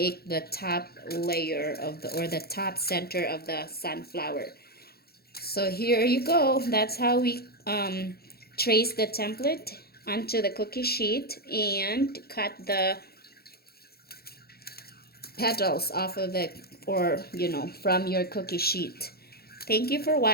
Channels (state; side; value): late; right; 0.45 ms